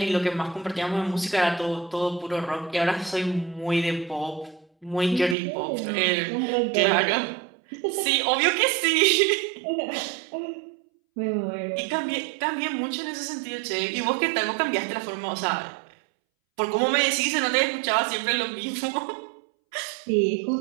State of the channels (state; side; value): drops out; left; at 5.4 s